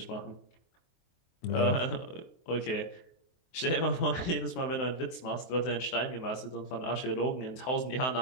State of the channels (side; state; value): right; late; 23 ms